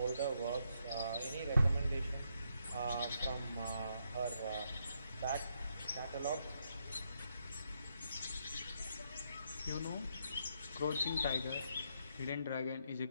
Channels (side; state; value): both; inverted; correlation -0.78